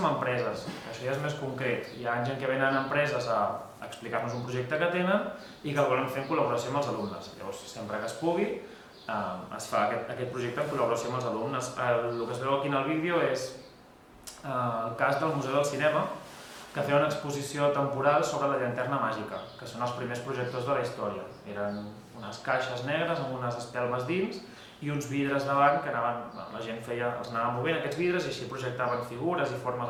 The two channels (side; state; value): both; identical; correlation 1.00